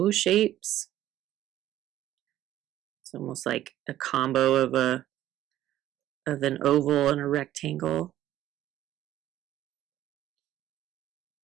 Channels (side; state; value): left; quieter; 13.3 dB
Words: shapes. It's almost like a combo of an oval and a rectangle.